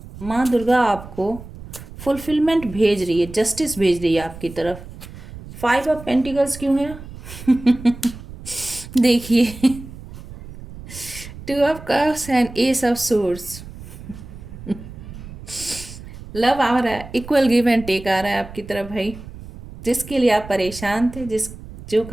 माँ दुर्गा आपको फुलफिलमेंट भेज रही है, जस्टिस भेज रही है आपकी तरफ। 5 ऑफ पेंटिकल्स क्यों है देखिए, 2 of cups and ace of swords. Love आ रहा है, इक्वल गिव एंड टेक आ रहा है आपकी तरफ भाई। जिसके लिए आप परेशान थे, जो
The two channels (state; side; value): noise; right; rumble, 14 dB below the sound